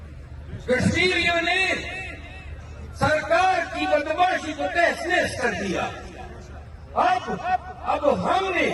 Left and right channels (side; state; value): both; identical; correlation 1.00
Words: کشمیریوں نے سرکار کی بدماشی کو تحس نحس کر دیا۔ اب ہم نے